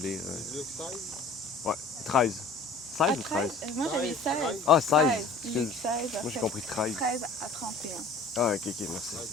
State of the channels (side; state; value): right; quieter; 3.6 dB